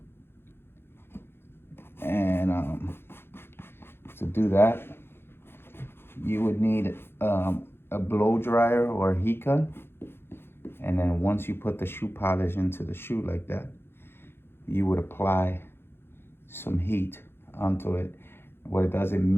And to do that, you would need a blow dryer or a heat gun. And then once you put the shoe polish into the shoe like that, you would apply some heat onto it. What it does, it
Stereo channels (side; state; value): right; late; 0.11 ms